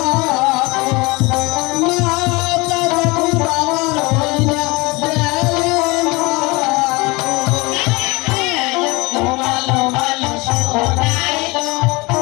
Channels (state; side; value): quieter; right; 24.7 dB